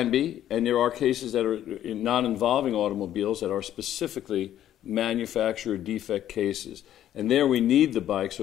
be, and there are cases that are not involving automobiles that are specifically manufacturer defect cases. And there we need the bike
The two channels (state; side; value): quieter; right; 11.6 dB